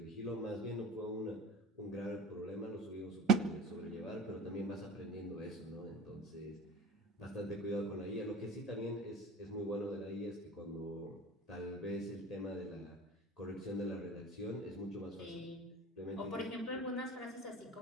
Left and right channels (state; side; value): normal; both; correlation 0.37